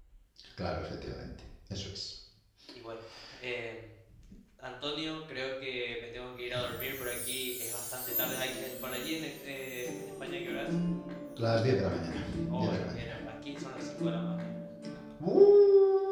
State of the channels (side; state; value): both; identical; correlation 1.00